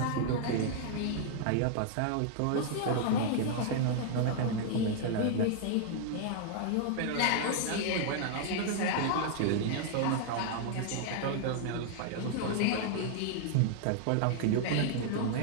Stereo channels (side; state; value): both; different; correlation 0.00